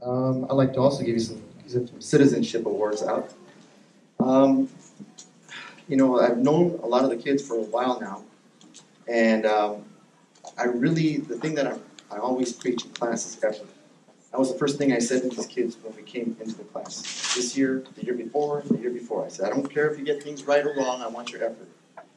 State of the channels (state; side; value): identical; both; correlation 1.00